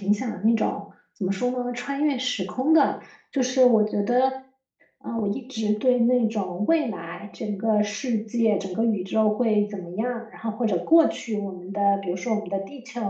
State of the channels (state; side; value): identical; both; correlation 1.00